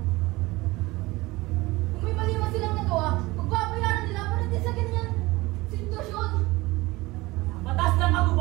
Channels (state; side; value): quieter; left; 20.9 dB